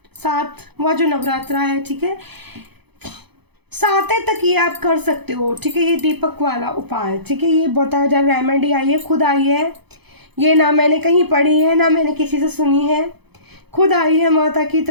जो नवरात्रा है, ठीक है, 7 तक ये आप कर सकते हो, ठीक है। ये दीपक वाला उपाय, ठीक है, ये बताया जा रहा, रेमेडी आई है, खुद आई है, ये ना मैंने कहीं पढ़ी है ना मैंने किसी से सुनी है, खुद आई है माता की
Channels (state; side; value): late; left; 0.98 ms